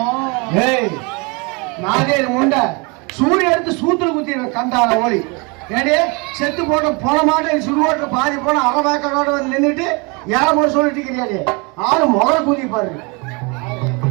ஏய் நாகேரி முண்டை சூரிய எடுத்து சூத்துல குத்தி கண்டான ஓடி ஏடே செத்து போட்ட போன மாட்டேன் சுடுவோட்ட பாதி போன அறவாக்கோட வந்து நின்றுட்டு ஏழை சொல்லிட்டு இருக்கிறியாடே ஆளு முதல்ல கூதி பாருங்க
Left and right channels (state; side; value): quieter; left; 29.7 dB